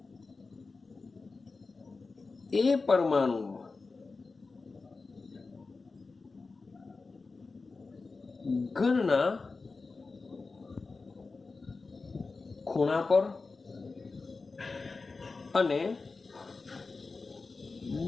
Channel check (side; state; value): right; quieter; 4.0 dB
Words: એ પરમાણુ ઘનના ખૂણા પર અને